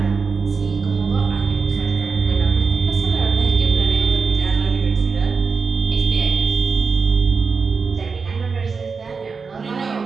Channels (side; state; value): left; quieter; 5.0 dB